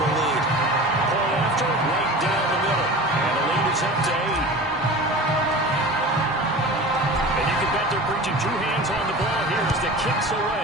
lead. Pull after, right down the middle. And the lead is up to 8. And you can bet they're preaching 2 hands on the ball here as the kicks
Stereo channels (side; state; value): both; normal; correlation 0.35